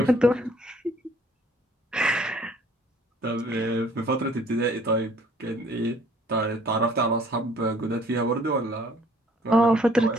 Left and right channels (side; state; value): both; normal; correlation 0.58